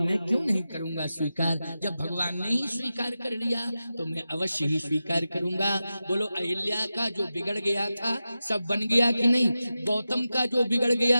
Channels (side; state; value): both; inverted; correlation -0.92